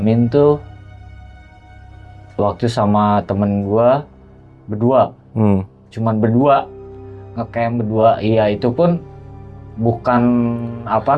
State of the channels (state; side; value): identical; both; correlation 1.00